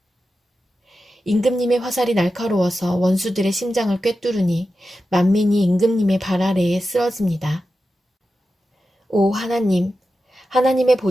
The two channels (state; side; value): normal; both; correlation 0.91